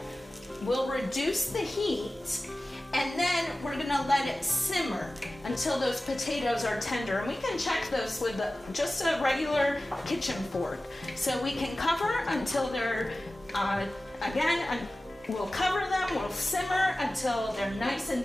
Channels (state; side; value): normal; both; correlation 0.96